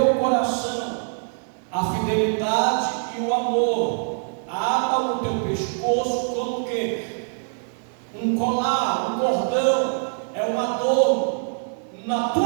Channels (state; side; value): silent; left; digital silence